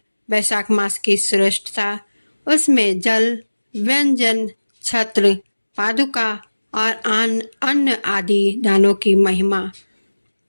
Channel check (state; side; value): inverted; both; correlation -1.00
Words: वैशाख मास की श्रेष्ठता, उसमें जल, व्यंजन, छत्र, पादुका और अन्न आदि दानों की महिमा।